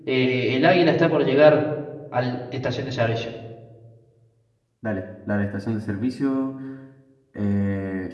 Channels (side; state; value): both; identical; correlation 1.00